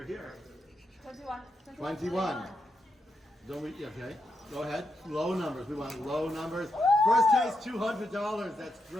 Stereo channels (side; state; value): both; normal; correlation 0.83